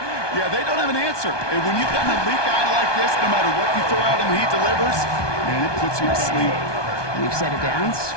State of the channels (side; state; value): right; late; 1.2 ms